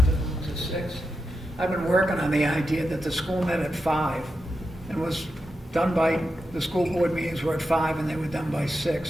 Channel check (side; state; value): both; normal; correlation 0.88